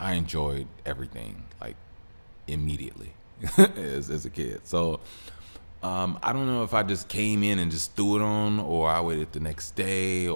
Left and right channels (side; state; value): both; inverted; correlation -1.00